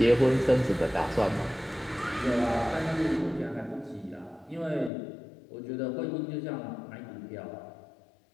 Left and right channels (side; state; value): right; drops out; at 4.9 s